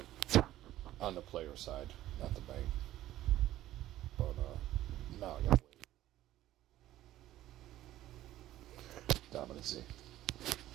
On the player side, not the bank. But, now I gotta wait. Dominancy.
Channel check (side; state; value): left; quieter; 14.1 dB